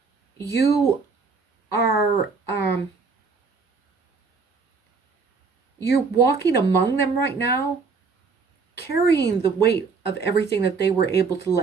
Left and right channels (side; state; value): left; quieter; 4.8 dB